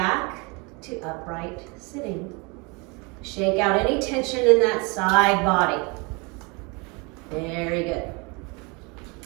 to upright sitting. Shake out any tension in that side body. Very good.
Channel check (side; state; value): left; quieter; 29.2 dB